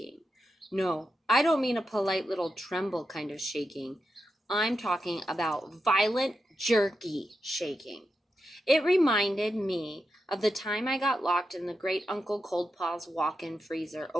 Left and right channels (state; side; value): normal; both; correlation 0.88